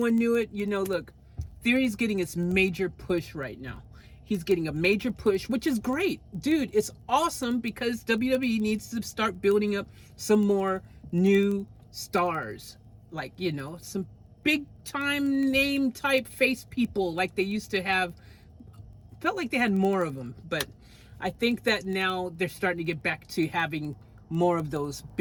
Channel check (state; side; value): identical; both; correlation 1.00